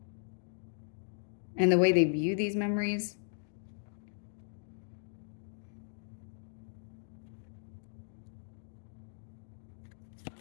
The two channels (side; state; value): right; silent; digital silence